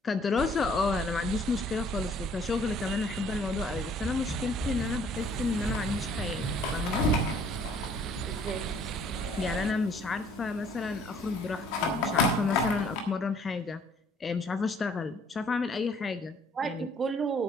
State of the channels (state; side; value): normal; both; correlation 0.58